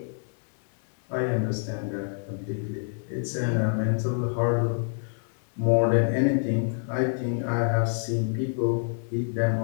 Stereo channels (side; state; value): right; silent; 60 dB below the other